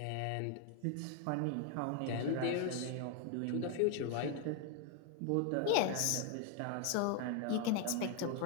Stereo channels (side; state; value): both; different; correlation 0.00